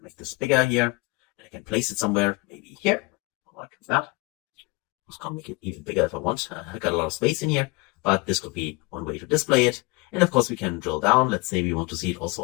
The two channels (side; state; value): right; quieter; 25.9 dB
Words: make this bigger here. I can place it somewhere, maybe here, like that. I can make it even bigger if I want. I got a lot of space in here, but this could be one way to display it. And of course, we can drill down. Let's say we want to see it also